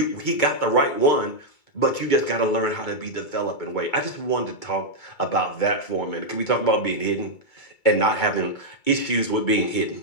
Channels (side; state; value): right; late; 2.2 ms